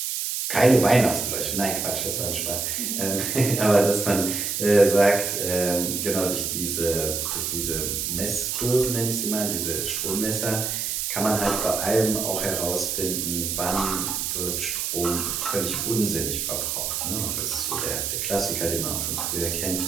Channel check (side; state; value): right; noise; hiss, 1 dB below the sound